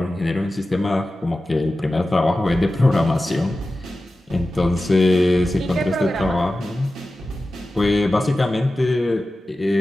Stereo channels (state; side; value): normal; both; correlation 0.94